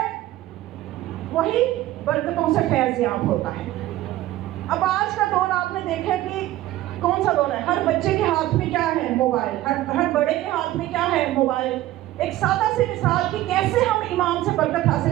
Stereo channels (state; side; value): quieter; left; 15.4 dB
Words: وہی برکتوں سے فیض یاب ہوتا ہے. اب آج کا دور آپ نے دیکھا کہ کون سا دور ہے؟ ہر بچے کے ہاتھ میں کیا ہے؟ موبائل. ہر بڑے کے ہاتھ میں کیا ہے؟ موبائل. ایک سادہ سی مثال کہ کیسے ہم امام سے برکت